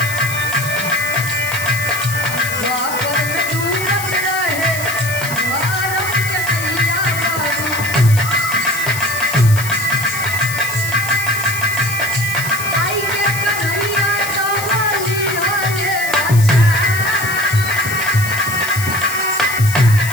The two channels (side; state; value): left; noise; hiss, 8 dB below the sound